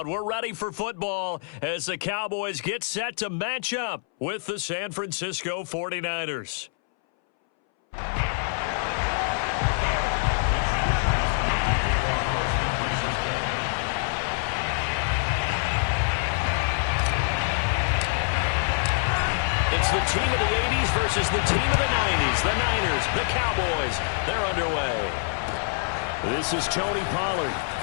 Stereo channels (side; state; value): right; silent; 61 dB below the other